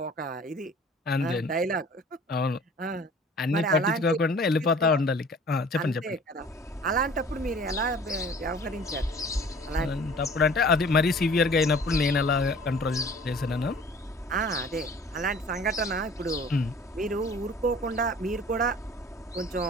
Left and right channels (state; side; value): normal; both; correlation 0.48